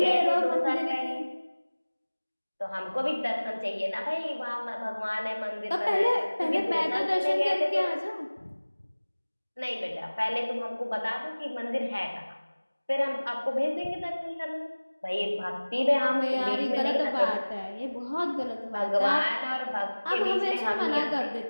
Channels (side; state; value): both; inverted; correlation -1.00